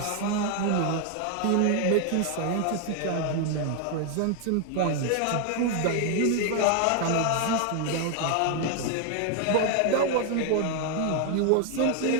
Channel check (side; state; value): both; different; correlation 0.01